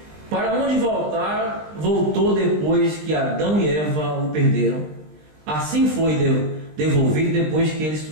Para onde voltar, voltou depois que Adão e Eva o perderam. Assim foi devolvido depois que eles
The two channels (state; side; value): late; left; 20 ms